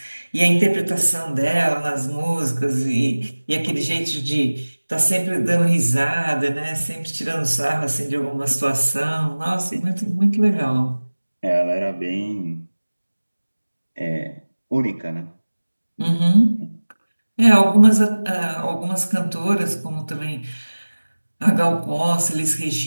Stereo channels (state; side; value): inverted; both; correlation -1.00